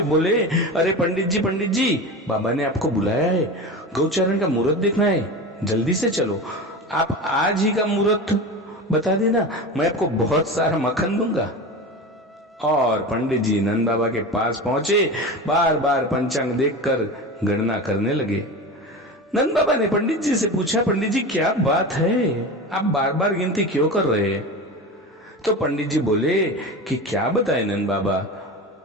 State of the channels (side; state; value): both; normal; correlation 0.28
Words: बोले, अरे पंडित जी, बाबा ने आपको बुलाया है, गौचारण का मुहूर्त देखना है, जल्दी से चलो। आप आज ही का मुहूर्त बता देना, मैं आपको बहुत सारा मक्खन दूंगा। और पंडित जी नंद बाबा के पास पहुंचे, बार बार पंचांग देखकर गणना करने लगे। नंद बाबा ने पंडित जी से पूछा, पंडित जी क्या बात है, आप बार बार गिनती क्यों कर रहे हैं? तो पंडित जी बोले कि क्या बताए नंद बाबा,